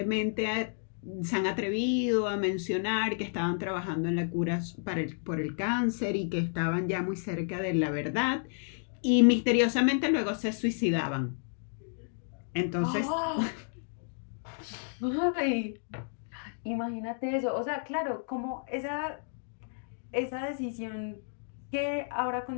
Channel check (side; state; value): right; silent; digital silence